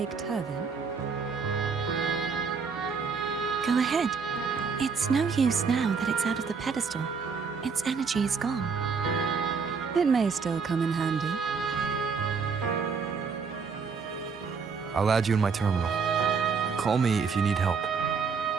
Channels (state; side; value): quieter; left; 5.4 dB